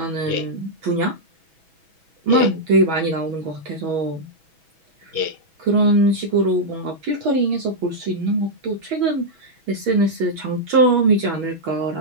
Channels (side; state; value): left; late; 6.1 ms